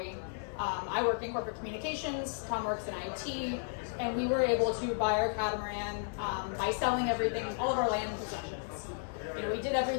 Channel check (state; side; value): silent; right; digital silence